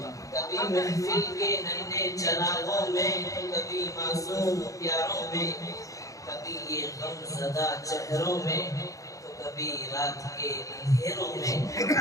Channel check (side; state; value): right; late; 0.16 ms